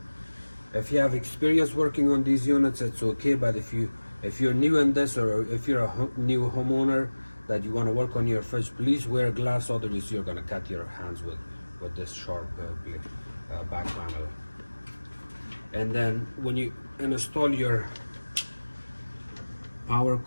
If you have experience working on these units, it's okay, but if you're new in this, or if you're a new homeowner that you want to work on your fridge, please wear gloves, otherwise you're going to cut your hands with this sharp back panel. And then when you install your power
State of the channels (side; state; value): both; inverted; correlation -1.00